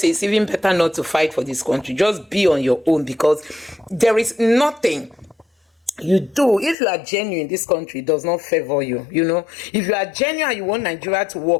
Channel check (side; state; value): right; drops out; at 6.8 s